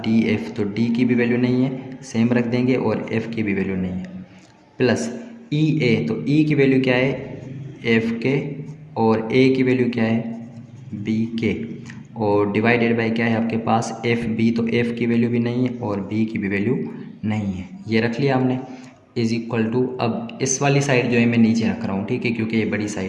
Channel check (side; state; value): both; identical; correlation 1.00